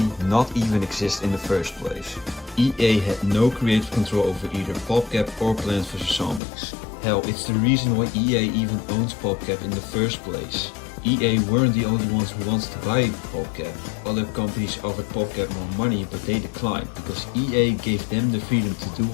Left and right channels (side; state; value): right; drops out; at 6.4 s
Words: not even exist in the first place. EA had no creative control over either PopCap or Plants vs. Zombies. Hell, it's the reason why EA even owns PopCap in the first place. EA weren't the only ones who wanted to buy PopCap. Other companies offered PopCap more money, but they declined because EA gave them the freedom to do